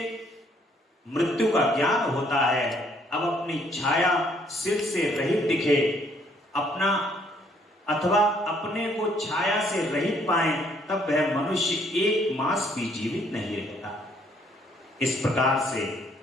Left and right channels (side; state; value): both; normal; correlation 0.66